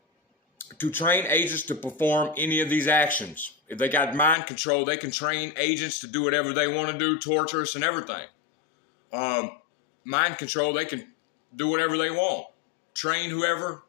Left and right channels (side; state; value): right; drops out; at 4.4 s